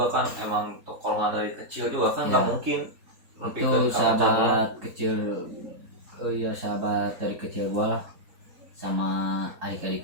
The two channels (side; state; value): left; late; 3.9 ms